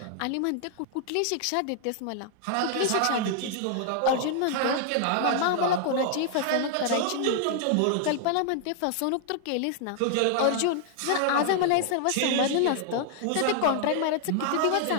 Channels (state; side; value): different; both; correlation 0.00